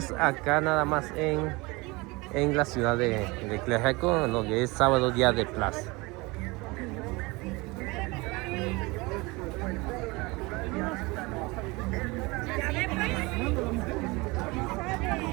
acá nada más en la ciudad de Tlaxiaco, lo que es sábado día de plaza.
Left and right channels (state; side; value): quieter; left; 24.3 dB